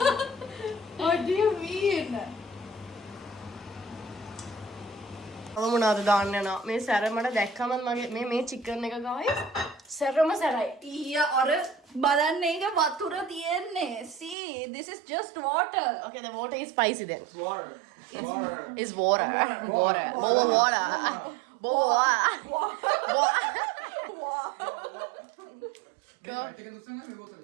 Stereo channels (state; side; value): drops out; left; at 14.4 s